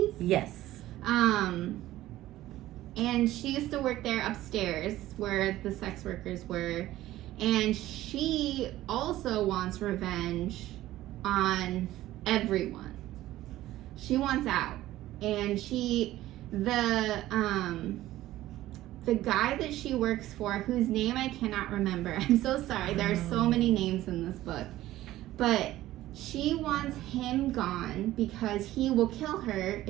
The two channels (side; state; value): left; quieter; 15.2 dB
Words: Yes. And she used to work there upstairs where the sex workers were, and she also wants revenge on everyone. She wants out, and the guy that she works for, whose name I cannot remember. I'm so sorry. There are so many names in this book. But she wants him gone because he will kill her